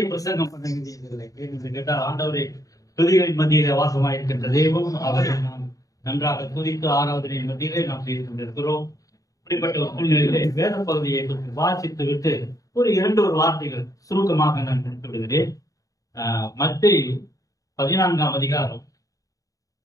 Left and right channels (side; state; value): right; late; 0.17 ms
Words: பிரசங்கம் பண்ண வேண்டியதில்லை. என்று கேட்டால் ஆண்டவரை துதிகளின் மத்தியிலே வாசமாயிருக்கின்ற தெய்வம், அவரை நாம் நன்றாக துதித்து ஆராதனையின் மத்தியிலே நாம் செய்து கொண்டிருக்கிறோம். இப்படிப்பட்ட ஒரு சூழ்நிலையிலே வேத பகுதியை வாசித்து விட்டு ஒரு வார்த்தைகள் சுருக்கமாக நான் முடித்து விடுகிறேன். மத்தேயு 14ஆம் அதிகாரம்